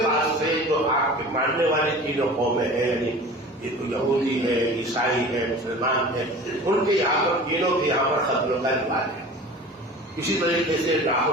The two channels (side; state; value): both; normal; correlation 0.39